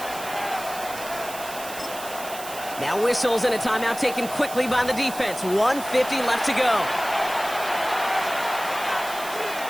Now whistles and a timeout taken quickly by the defense. 1:50 left to go.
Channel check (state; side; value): noise; right; hiss, 12 dB below the sound